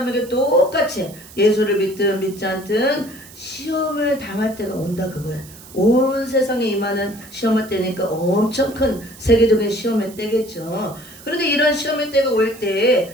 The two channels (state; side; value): noise; right; hiss, 19 dB below the sound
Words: 똑같이 예수를 믿든 믿지 않든 시험을 당할 때가 온다 그거예요. 온 세상에 임하는 시험의 때니까 엄청 큰 세계적인 시험의 때겠죠. 그런데 이런 시험의 때가 올 때